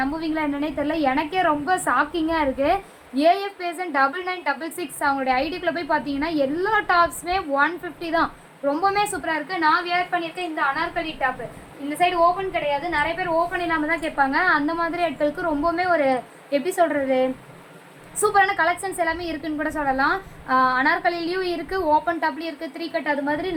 நம்புவீங்களா என்னன்னே தெரியல. எனக்கே ரொம்ப ஷாக்கிங்காக இருக்குது. ஏஎஃப் பேசன் 9966 அவங்களுடைய ஐடிக்குள்ளே போய் பார்த்தீங்கன்னா எல்லா டாப்ஸுமே 150 தான். ரொம்பவுமே சூப்பராக இருக்குது. நான் வியர் பண்ணியிருக்கேன் இந்த அனார்கலி டாப்பு. இந்த சைடு ஓப்பன் கிடையாது, நிறைய பேர் ஓப்பன் இல்லாமல் தான் கேட்பாங்க. அந்த மாதிரி இடத்துக்கு ரொம்பவுமே ஒரு எப்படி சொல்கிறது, சூப்பரான கலெக்ஷன்ஸ் எல்லாமே இருக்குதுன்னு கூட சொல்லலாம். அனார்கலிலையும் இருக்குது, ஓப்பன் டாப்லேயும் இருக்குது, 3 கட் அது மாதிரி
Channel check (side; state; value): both; identical; correlation 1.00